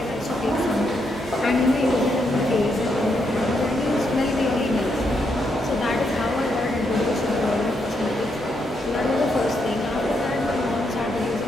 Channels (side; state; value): both; normal; correlation 0.79